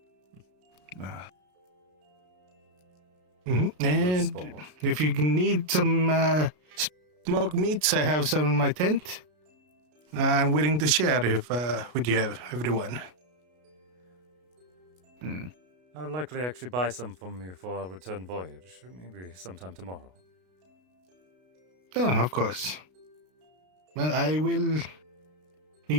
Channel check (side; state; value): left; late; 33 ms